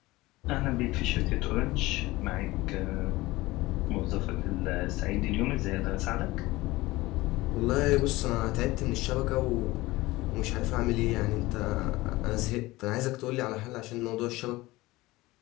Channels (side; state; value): right; quieter; 19.7 dB